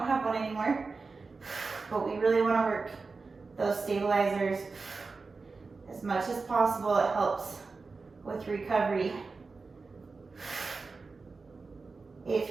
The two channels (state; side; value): quieter; left; 4.2 dB